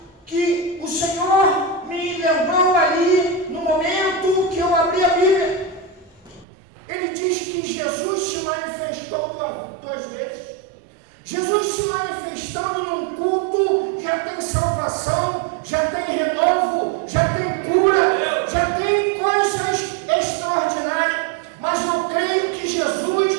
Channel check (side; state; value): left; drops out; at 6.5 s